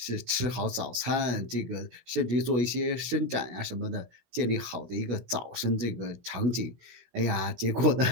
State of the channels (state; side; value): late; left; 16 ms